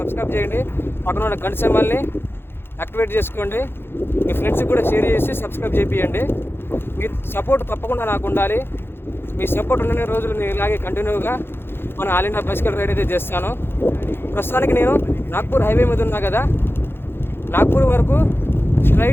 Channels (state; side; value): late; right; 0.11 ms